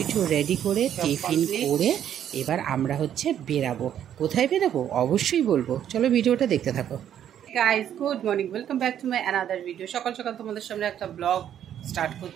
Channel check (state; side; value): quieter; left; 10.1 dB